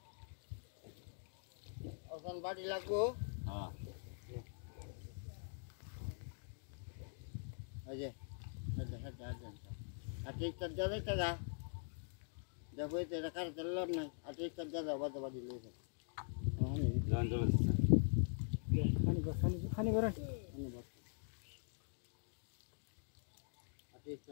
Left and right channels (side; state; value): right; silent; digital silence